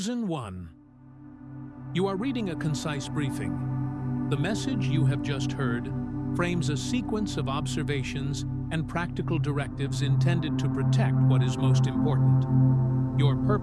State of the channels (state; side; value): identical; both; correlation 1.00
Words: one. You are reading a concise briefing. The message you have just heard frames a sequence of observations and practical directives intended to protect what is most important: your